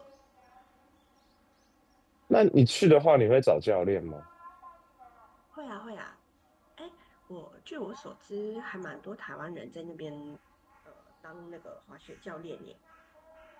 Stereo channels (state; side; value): identical; both; correlation 1.00